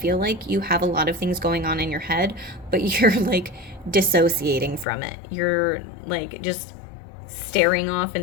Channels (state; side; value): drops out; right; at 4.9 s